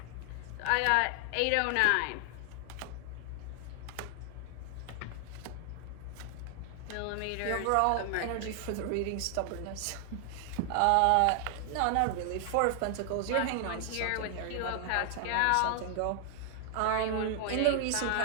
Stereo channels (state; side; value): different; both; correlation 0.00